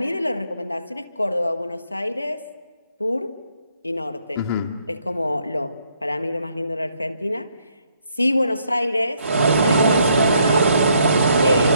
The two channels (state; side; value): inverted; both; correlation -0.72